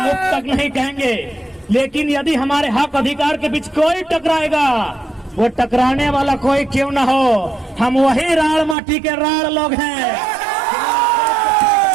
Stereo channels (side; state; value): left; drops out; at 8.8 s